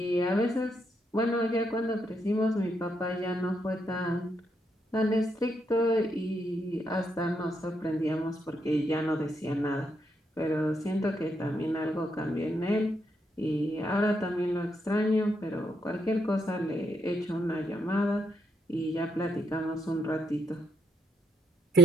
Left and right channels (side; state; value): both; normal; correlation 0.78